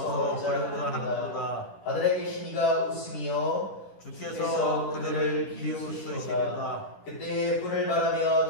하는도다. 하늘에 계신 이가 웃으며 주께서 그들을 비웃으시리로다. 그때 불을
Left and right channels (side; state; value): right; late; 10 ms